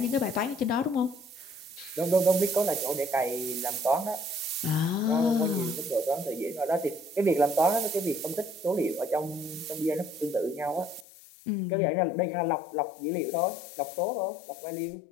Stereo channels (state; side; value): drops out; right; at 11.1 s